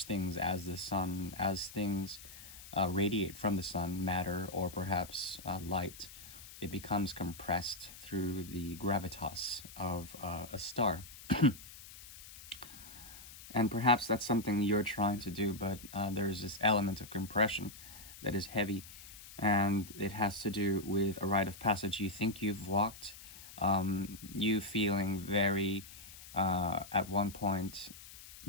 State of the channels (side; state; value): left; noise; hiss, 16 dB below the sound